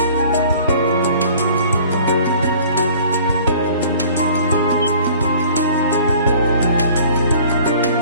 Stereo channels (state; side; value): inverted; both; correlation -0.50